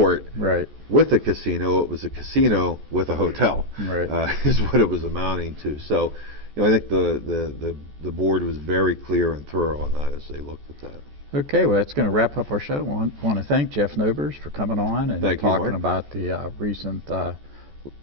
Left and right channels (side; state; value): left; late; 14 ms